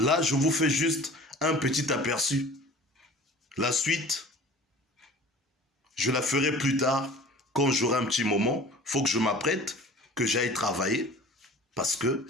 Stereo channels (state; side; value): normal; both; correlation 0.44